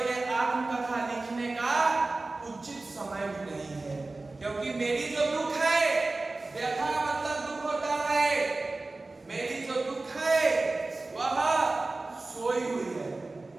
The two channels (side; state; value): left; quieter; 3.2 dB